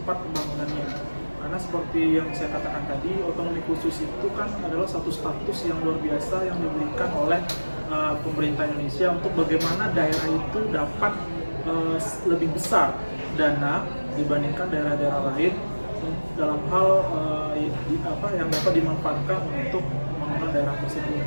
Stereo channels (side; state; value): both; inverted; correlation -1.00